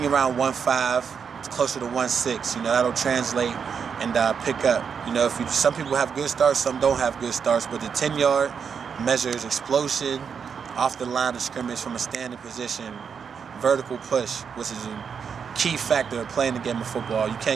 around 1.5, it's closer to 1.6. You know, that'll translate and pick up. You know, some people have good starts, some don't have good starts, but the 10-yard measures explosion off the line of scrimmage from a standing position, vertical push, which is a key factor of playing the game of football. You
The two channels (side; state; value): left; quieter; 6.6 dB